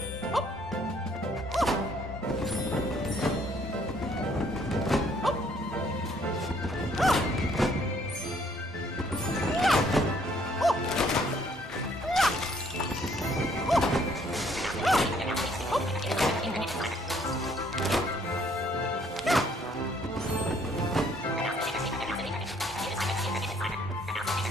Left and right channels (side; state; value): both; normal; correlation 0.64